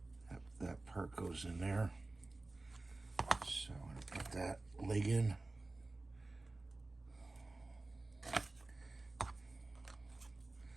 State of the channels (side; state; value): left; quieter; 3.1 dB